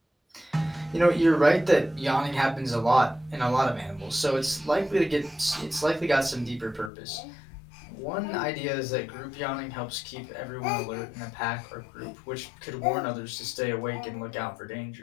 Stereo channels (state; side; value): drops out; right; at 6.9 s